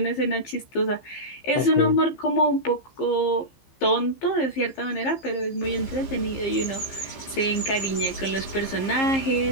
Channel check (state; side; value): late; right; 15 ms